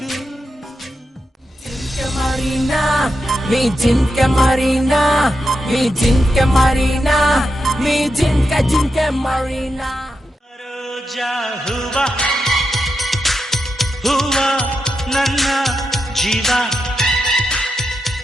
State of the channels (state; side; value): normal; both; correlation 0.87